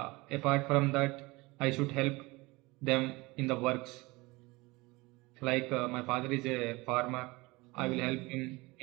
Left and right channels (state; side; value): quieter; left; 23.0 dB